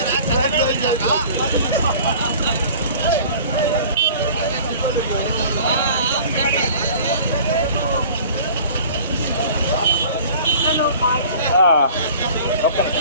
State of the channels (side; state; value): both; inverted; correlation -0.45